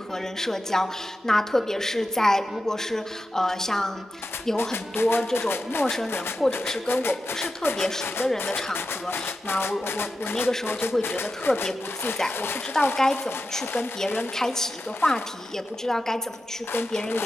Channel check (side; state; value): both; normal; correlation 0.90